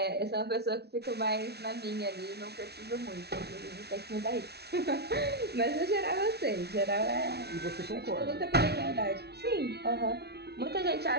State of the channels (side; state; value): left; late; 0.48 ms